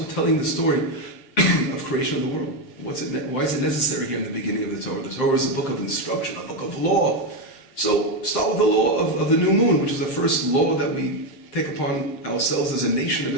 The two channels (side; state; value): right; late; 7.6 ms